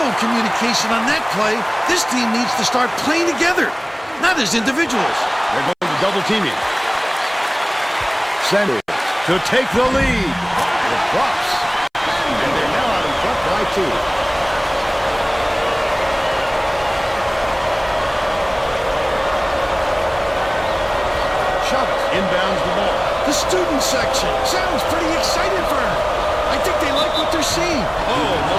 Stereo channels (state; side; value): identical; both; correlation 1.00